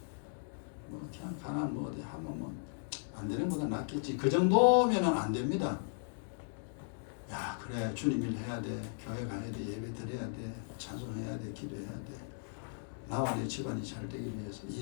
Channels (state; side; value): silent; right; digital silence